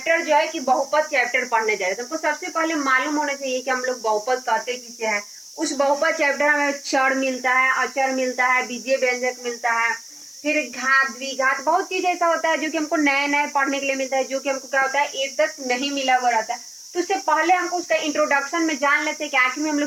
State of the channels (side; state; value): left; noise; hiss, 25 dB below the sound